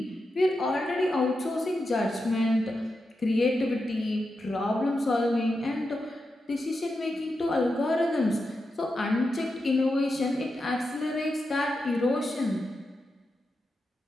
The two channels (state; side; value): normal; both; correlation 0.88